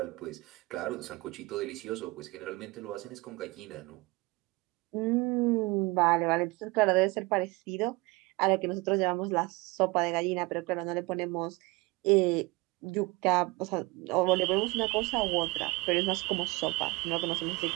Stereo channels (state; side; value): quieter; left; 23.4 dB